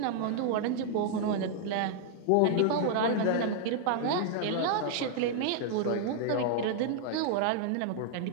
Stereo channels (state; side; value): different; both; correlation -0.01